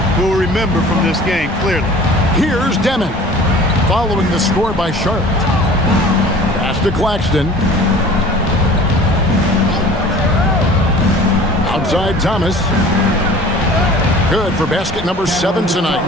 we'll remember from this game, clearly. Here's Demon, following the score by Charlotte. to Claxton. Outside Thomas. Good for basket number 7 tonight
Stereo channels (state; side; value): normal; both; correlation 0.45